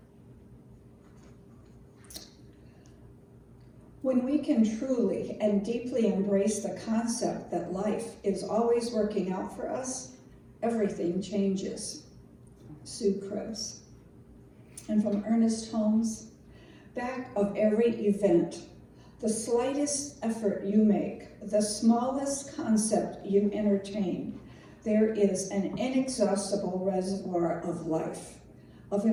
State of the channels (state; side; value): identical; both; correlation 1.00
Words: When we can truly and deeply embrace the concept that life is always working out for us, everything changes. Sue Krebs. And from Ernest Holmes, back of every event, the slightest effort you make, the smallest concept you entertain, there is an inexhaustible reservoir of life, of